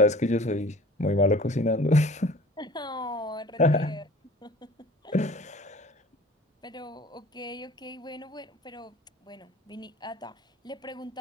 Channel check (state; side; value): normal; both; correlation 0.45